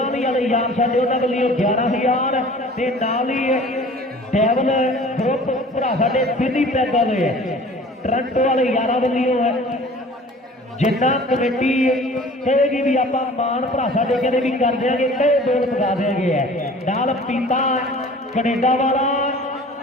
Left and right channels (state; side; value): normal; both; correlation 0.46